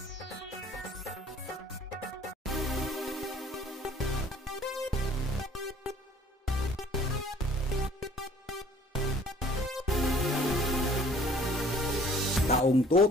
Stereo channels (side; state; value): both; normal; correlation 0.54